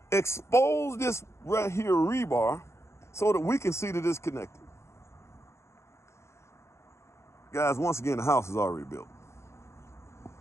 expose this right here rebar so that we can see that it's connected. Guys, once again, the house is already built.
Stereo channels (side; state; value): right; late; 0.13 ms